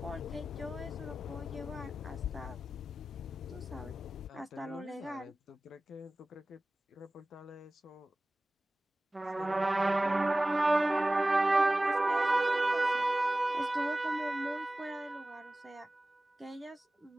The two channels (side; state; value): both; normal; correlation 0.97